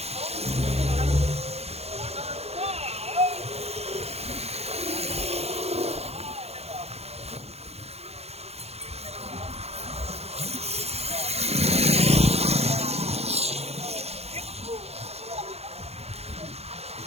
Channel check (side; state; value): left; late; 0.30 ms